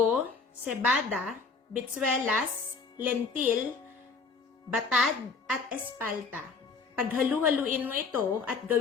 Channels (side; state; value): right; quieter; 4.6 dB